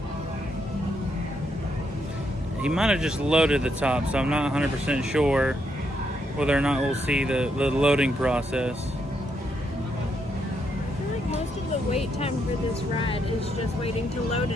He might have just loaded the top, so I'm not 100% sure whether or not we'll see the loading process. I feel like most of the wait time for this ride is just waiting to load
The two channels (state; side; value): normal; both; correlation 0.78